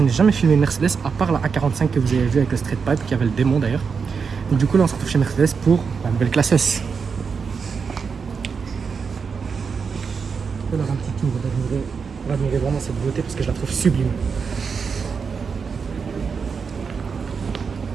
n'ai jamais filmé une Mercedes à part la A45 que vous avez vu avec le Street Pipe qui avait le démon d'ailleurs. Donc du coup là on se retrouve chez Mercedes pour la nouvelle classe S. Je vais leur un petit tour pour admirer vraiment cette beauté parce que je la trouve sublime.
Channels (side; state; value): left; quieter; 5.7 dB